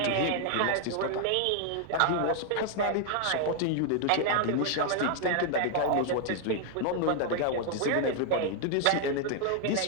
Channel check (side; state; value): both; different; correlation 0.00